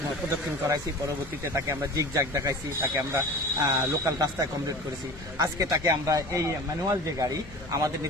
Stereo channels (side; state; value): left; noise; hum, 18 dB below the sound